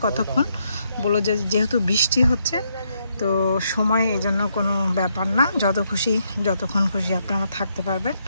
কতক্ষণ, বললো যে যেহেতু বৃষ্টি হচ্ছে তো সময় এই জন্য কোনো ব্যাপার না, যত খুশি যতক্ষণ খুশি আপনারা থাকতে পারবেন।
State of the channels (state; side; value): inverted; both; correlation -0.76